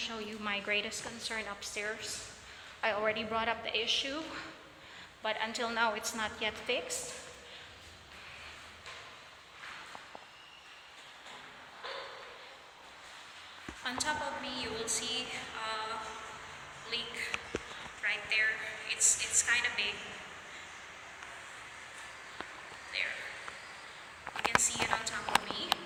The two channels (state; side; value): identical; both; correlation 1.00